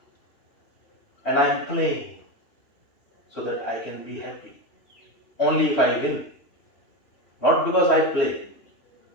and I am playing so that I can be happy. Only if I win. Not because I play,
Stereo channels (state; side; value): late; right; 3.1 ms